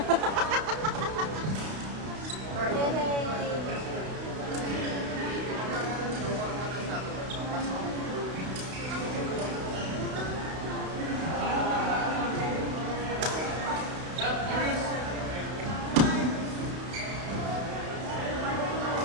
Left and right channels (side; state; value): left; late; 32 ms